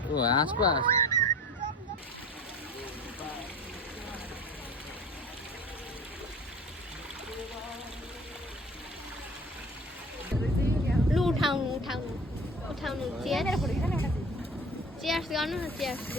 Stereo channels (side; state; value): both; normal; correlation 0.40